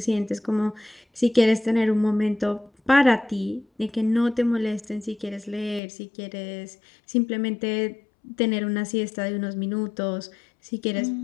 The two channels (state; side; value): drops out; right; at 5.8 s